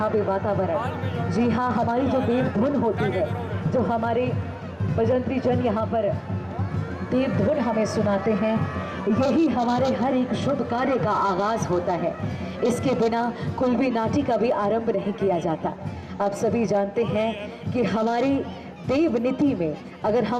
पे वातावरण। जी हाँ, हमारी जो देव धुन होती है, जो हमारे बजंत्री जन यहाँ पर देव धुन हमें सुनाते हैं, यही हमारे हर एक शुभ कार्य का आगाज होता है। इसके बिना कोई भी नाटी का भी आरंभ नहीं किया जाता। आप सभी जानते हैं कि हमारी देव नीति में अगर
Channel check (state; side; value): identical; both; correlation 1.00